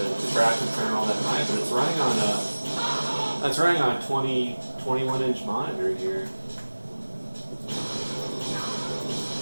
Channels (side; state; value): both; inverted; correlation -1.00